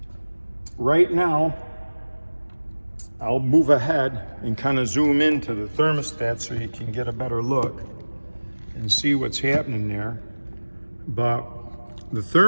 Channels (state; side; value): inverted; both; correlation -1.00